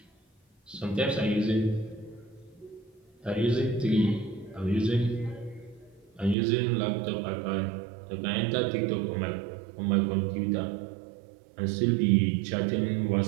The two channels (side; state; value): left; drops out; at 6.4 s